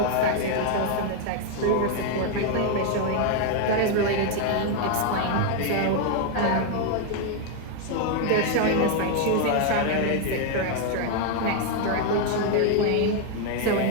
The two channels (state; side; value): different; both; correlation 0.01